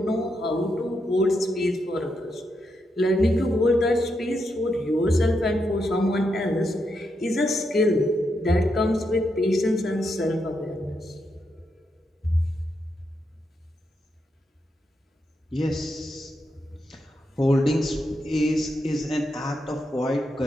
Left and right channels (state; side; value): normal; both; correlation 0.82